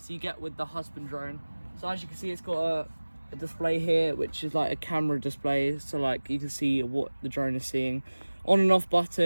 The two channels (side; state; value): both; inverted; correlation -1.00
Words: you get with the Husban drone. So as you can see, it's got a display here, which is like a camera display, so like you can see what the drone is seeing. On and off